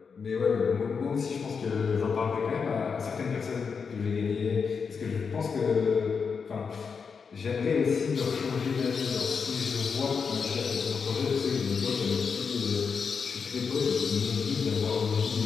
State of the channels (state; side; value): quieter; right; 5.7 dB